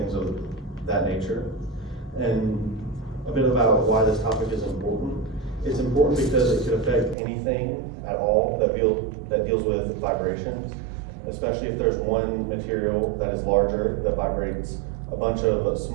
of that nature. And a bit about why this topic is important. It's important because it could affect anything at all that deals with vibrations, especially if there's one material that is larger that vibrates a bunch of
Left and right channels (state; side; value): drops out; left; at 7.2 s